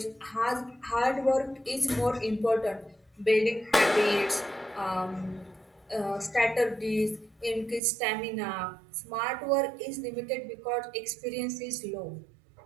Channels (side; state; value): left; drops out; at 7.8 s